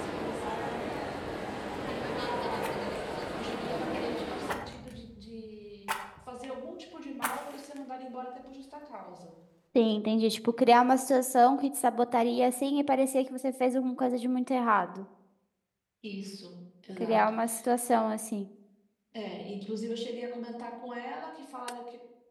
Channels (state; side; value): identical; both; correlation 1.00